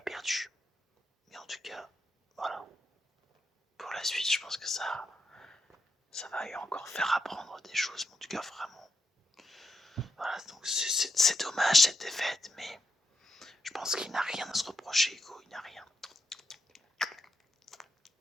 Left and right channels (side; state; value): both; normal; correlation 0.83